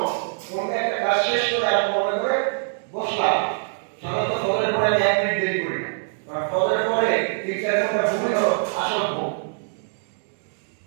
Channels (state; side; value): silent; left; digital silence